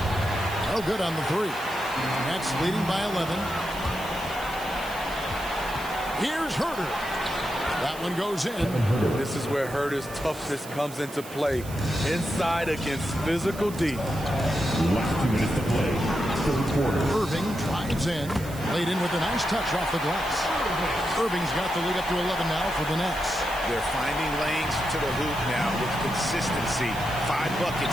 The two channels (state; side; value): noise; right; hiss, 16 dB below the sound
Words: No good on the 3. Nets leading by 11. Here's Herter. That one goes in. This is where Herter's toughness comes into play. Inside against physical D. Last 2 minutes to play. Third quarter. Irving drives in. Laid in with a nice touch off the glass. Irving's got the lead up to 11 now for the Nets. They're finding lanes to the hoop now with consistency. 5 buckets